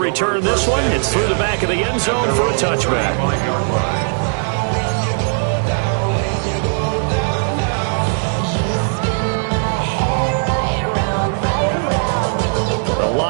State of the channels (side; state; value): left; silent; digital silence